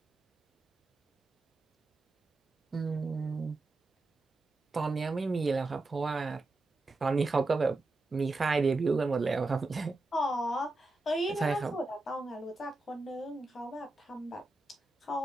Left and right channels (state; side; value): quieter; left; 3.0 dB